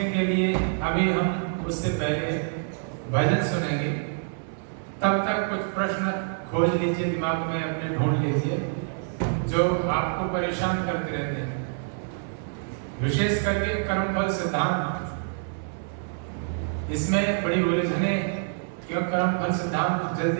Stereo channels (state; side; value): silent; left; 60 dB below the other